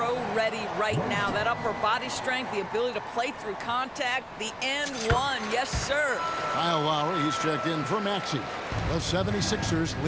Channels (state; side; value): identical; both; correlation 1.00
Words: right now. That upper body strength, the ability to play through contact, the and one, yes, sir. Kyle Lowry, he's checked in for Maxey. The 76ers